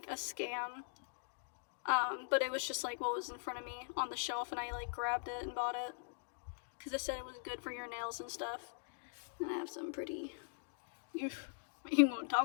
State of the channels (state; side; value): silent; right; digital silence